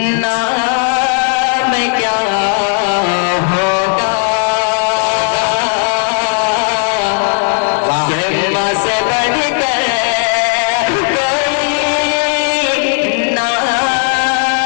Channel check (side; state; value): right; quieter; 38.8 dB